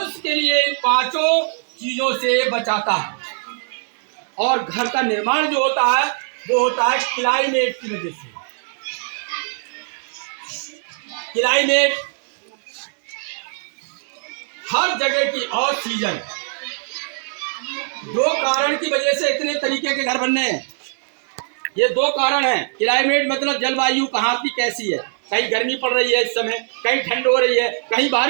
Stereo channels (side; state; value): left; silent; 65 dB below the other